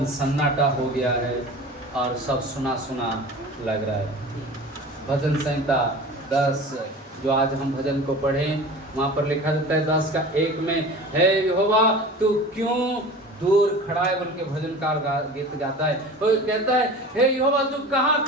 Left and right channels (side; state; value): both; normal; correlation 0.37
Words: सन्नाटा हो गया है और सब सुना सुना लग रहा है। भजन संहिता 10 जो आज हम भजन को पढ़ें, वहाँ पर लिखा जाता है 10 का 1 में, हे यहोवा तू क्यों दूर खड़ा है, बोल के भजनकार गीत गाता है। तो कहता है हे यहोवा तू कहाँ